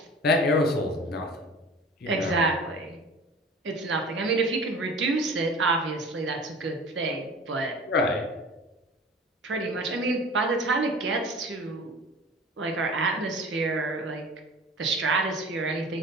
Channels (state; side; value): normal; both; correlation 0.40